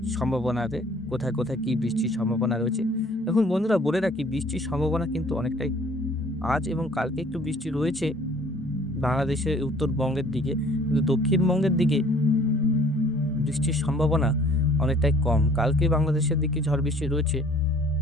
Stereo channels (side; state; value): both; normal; correlation 0.54